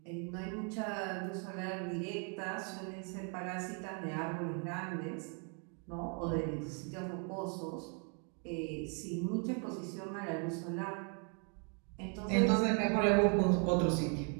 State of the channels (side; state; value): left; quieter; 39.6 dB